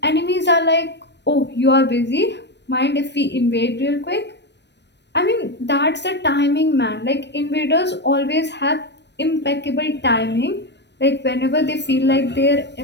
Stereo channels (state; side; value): late; right; 0.50 ms